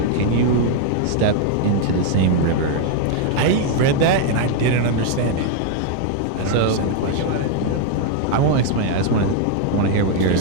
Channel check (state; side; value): different; both; correlation 0.00